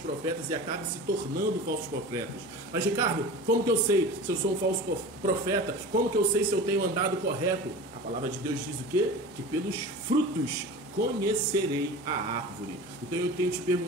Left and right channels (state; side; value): normal; both; correlation 0.35